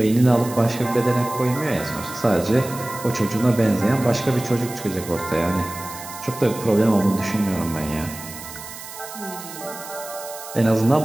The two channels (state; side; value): noise; right; hiss, 13 dB below the sound